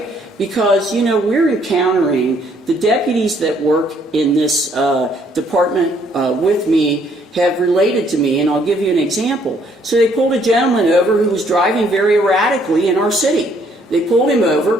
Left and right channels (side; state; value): both; normal; correlation 0.66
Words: Because, we're encountering the deputies that work in this department with me have related to me, and I'll give you an example. So they pulled a gentleman over who was driving very erratically in our city. They pulled him